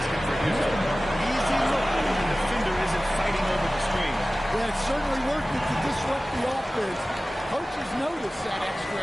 for Houston. Easy look when the defender isn't fighting over the screen. Yeah, it's certainly working to disrupt the offense. Coaches notice that extra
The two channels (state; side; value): normal; both; correlation 0.97